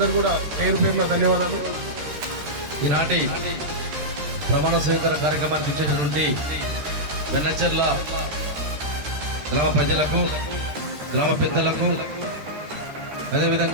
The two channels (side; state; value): left; late; 13 ms